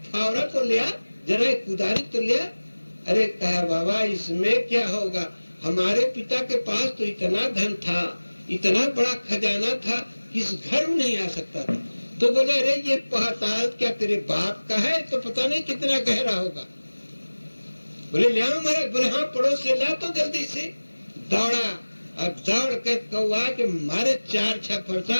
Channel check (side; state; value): both; inverted; correlation -1.00